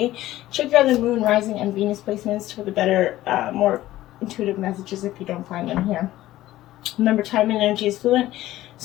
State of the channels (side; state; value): right; quieter; 15.2 dB